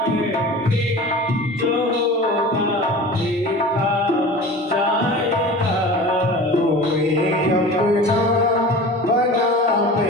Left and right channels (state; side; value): normal; both; correlation 0.37